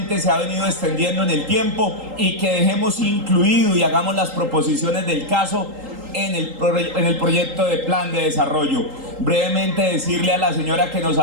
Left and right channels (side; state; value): left; late; 3.8 ms